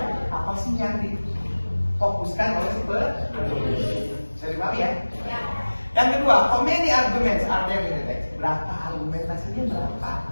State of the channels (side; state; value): both; inverted; correlation -1.00